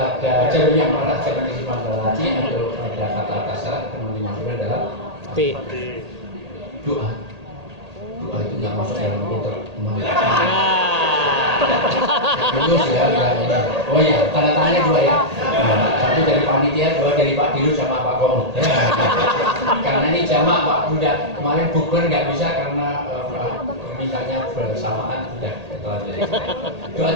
jarum yang merah, jangan disimpan dalam hati. Atau ada kata-kata salah, yang dimasukkan dalam doa. Doa itu nggak masuk dalam kotak terus ya. Oh iya, tanda tangannya 2 ya. Satu dari panitia, 2 dari Pak Dirut sama Pak Komo. Karena ini jamak Pak Buddha. Kemarin bukber nggak bisa karena mintanya bersamaan. Sudah ketelanjang. Doa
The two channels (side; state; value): left; late; 1.8 ms